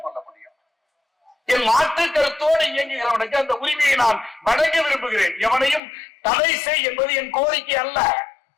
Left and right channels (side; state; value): right; drops out; at 5.8 s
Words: முடியும். என் மாற்று கருத்தோடு இயங்குகிறவனுக்கு அந்த உரிமையை நான் வழங்க விரும்புகிறேன். எவனையும் தடை செய் என்பது என் கோரிக்கை அல்ல.